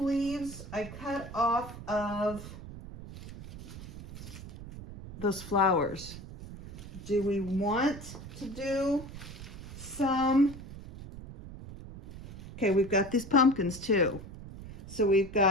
leaves I cut off of those flowers. Do we want to do some? Okay, we've got these pumpkins too. So we've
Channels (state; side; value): noise; right; rumble, 13 dB below the sound